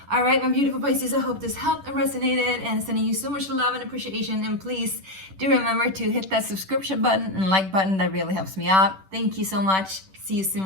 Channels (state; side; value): late; left; 10 ms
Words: All right, my beautiful Pisces, I hope this helped and resonated, and sending you so much love and appreciation. And please do remember to hit that subscription button and like button. That really helps me out. Thank you so much. See you